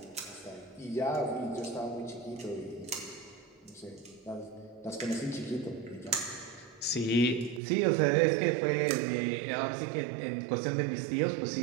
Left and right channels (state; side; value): drops out; left; at 7.6 s